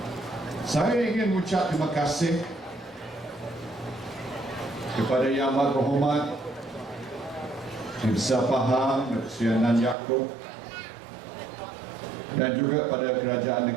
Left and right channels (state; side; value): drops out; left; at 10.0 s